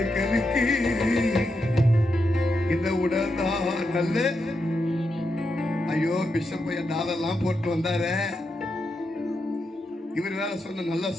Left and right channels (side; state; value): both; normal; correlation 0.85